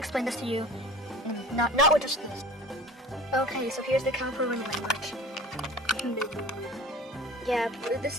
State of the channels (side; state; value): both; normal; correlation 0.41